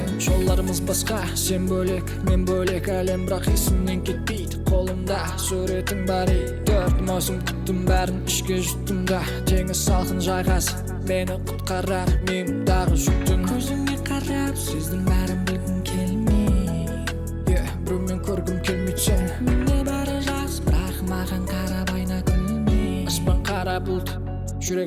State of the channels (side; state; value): both; identical; correlation 1.00